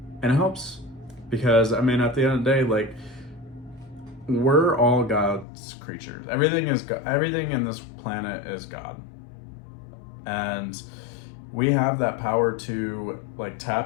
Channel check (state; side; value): drops out; right; at 5.5 s